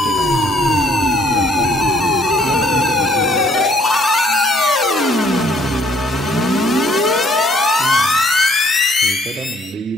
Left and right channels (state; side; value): normal; both; correlation 0.63